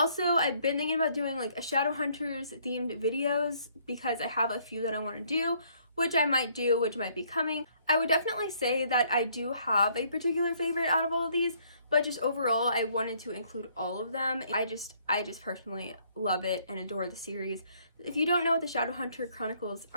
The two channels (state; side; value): inverted; both; correlation -0.65